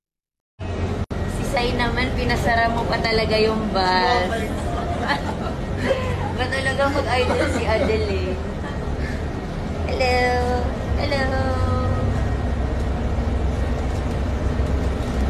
Si Sai naman, pinasara mo pa talaga yung bus. Ba talaga mag-idol si Adele? Hello! Hello!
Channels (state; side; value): identical; both; correlation 1.00